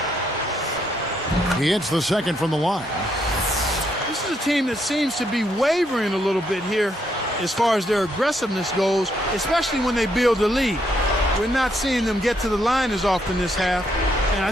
He hits the second from the line. This is a team that seems to be wavering a little bit here as far as their aggressiveness goes, especially when they build a lead. We're not seeing them get to the line as often this half, and I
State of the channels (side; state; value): both; normal; correlation 0.75